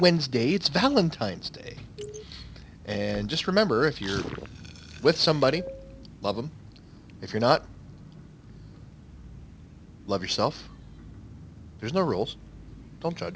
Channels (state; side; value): identical; both; correlation 1.00